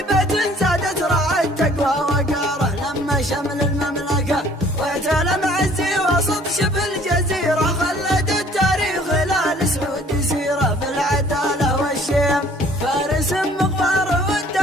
زادت رعى التقوى وقاره، لما شمل المملكة واعتلى معزي وسط شبه الجزيرة، خلد التاريخ هلال سعود سيرة بالعدالة والشيم، فارس مغفار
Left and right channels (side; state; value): both; normal; correlation 0.56